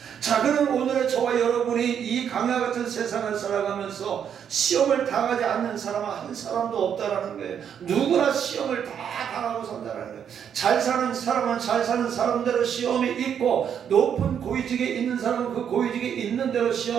자, 그럼 오늘의 저와 여러분이 이 강야 같은 세상을 살아가면서 시험을 당하지 않는 사람은 한 사람도 없다라는 거예요. 누구나 시험을 다 당하고 산다는 거예요. 잘 사는 사람은 잘 사는 사람대로 시험이 있고, 높은 고위직에 있는 사람은 그 고위직에 있는 대로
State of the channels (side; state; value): left; quieter; 8.3 dB